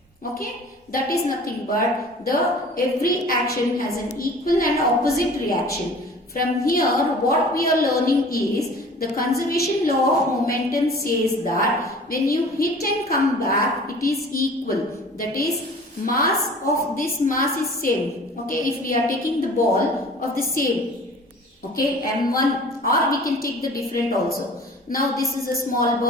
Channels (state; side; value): normal; both; correlation 0.45